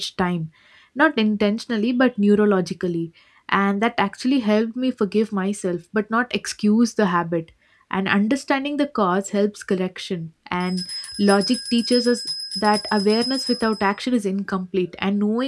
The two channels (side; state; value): both; identical; correlation 1.00